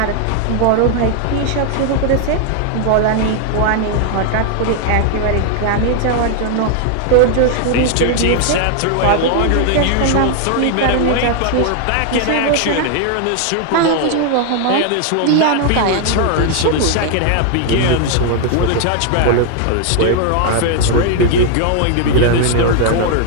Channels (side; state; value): both; different; correlation 0.00